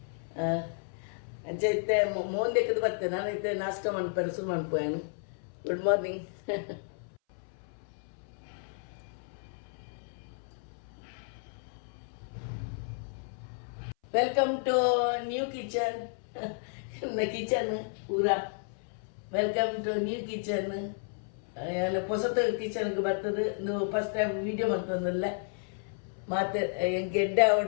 ಅಂಚೈತೆ ಮೋಂದೆಕ್ಕದು ಬರ್ತೇನೆ ನಾನೈತೆ ನಾಷ್ಟ ಮಾಡ್ಪೇನೆ ಶುರು ಮಾಡ್ಪೋಯನು good morning welcome to new kitchen kitchen ಪೂರಾ ವೆಲ್ಕಮ್ ಟು ನ್ಯೂ ಕಿಚನ್ ಹೊಸತ ಕಿಚನ್ಗೆ ಬರ್ತದೆ ನೀವು ಫಸ್ಟ್ ಟೈಮ್ ವೀಡಿಯೋ ಮಾಡ್ತಂದಲ್ಲ ಮತ್ತೆ ಎಡ್ಡೆ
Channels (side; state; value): right; silent; 56 dB below the other